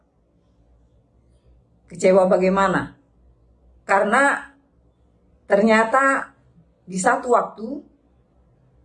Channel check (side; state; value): both; identical; correlation 1.00